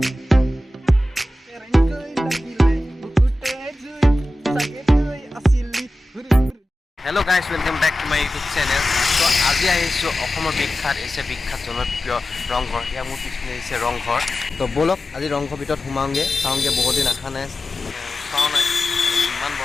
Hello guys, welcome back to my YouTube channel. So আজি আহিছো অসমৰ বিখ্যাত জনপ্ৰিয় ৰংঘৰ ইয়া মোৰ পিছনে আছে ৰংঘৰ তো বলক আজি ৰংঘৰ ভিতৰত সোমাওঁগে চাওঁগে বহুত দিন আহা নাই চাওঁ নাই ইমান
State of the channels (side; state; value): both; normal; correlation 0.94